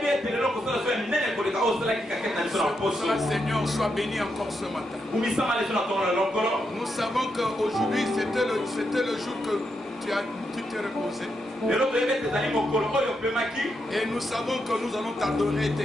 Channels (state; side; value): normal; both; correlation 0.82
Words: Seigneur, sois béni encore ce matin. Nous savons qu'aujourd'hui c'était le jour que tu t'es reposé. Et nous savons que nous allons t'adorer et